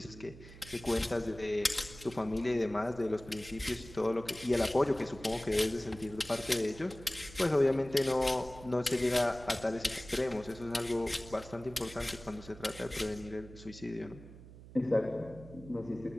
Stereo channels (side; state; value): right; noise; hum, 17 dB below the sound